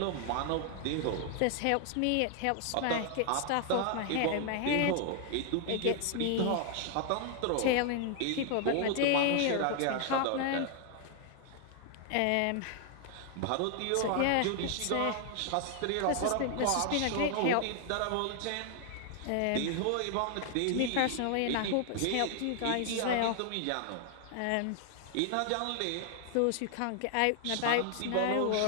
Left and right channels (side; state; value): both; different; correlation 0.00